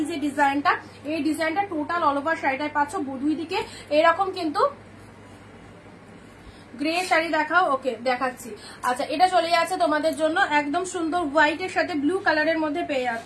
যে ডিজাইনটা, এই ডিজাইনটা টোটাল অল ওভার শাড়িটায় পাচ্ছ। দুই দিকে এরকম কিন্তু গ্রে শাড়ি দেখাও। ওকে, দেখাচ্ছি। আচ্ছা, এটা চলে যাচ্ছে তোমাদের জন্য একদম সুন্দর হোয়াইটের সাথে ব্লু কালারের মধ্যে পেয়ে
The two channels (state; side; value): identical; both; correlation 1.00